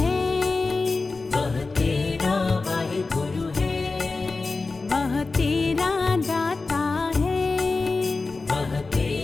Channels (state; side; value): quieter; right; 3.8 dB